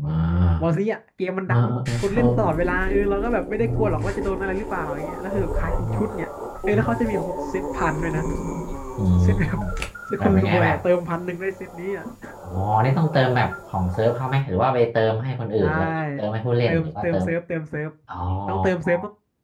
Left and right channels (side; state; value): both; identical; correlation 1.00